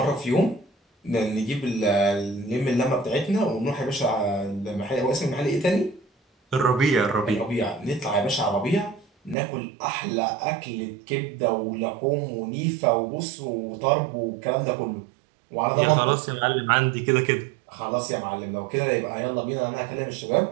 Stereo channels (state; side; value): drops out; left; at 9.3 s